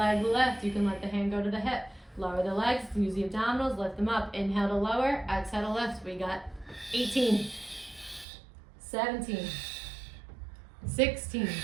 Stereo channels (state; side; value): drops out; left; at 8.2 s